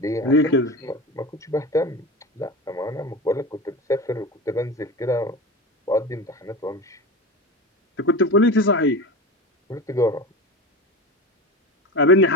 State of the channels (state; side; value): normal; both; correlation 0.28